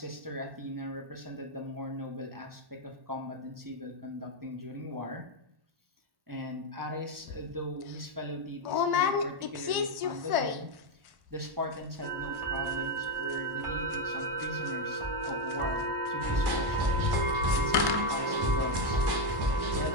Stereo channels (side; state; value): left; late; 1.1 ms